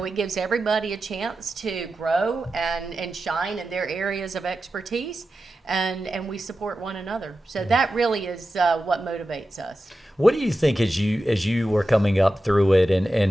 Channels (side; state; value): both; normal; correlation 0.92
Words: it gives everybody a chance to grow and shine in their areas of expertise, and we support one another. So that really is what motivates us. What do you think as you were coming up through it,